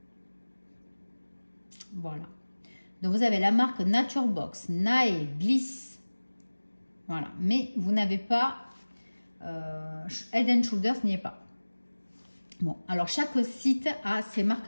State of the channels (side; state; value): both; inverted; correlation -1.00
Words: Voilà. Donc vous avez la marque Nature Box, Nae, Bliss. Voilà. Mais vous n'avez pas Head and Shoulders n'y est pas. Bon, alors chaque site a ses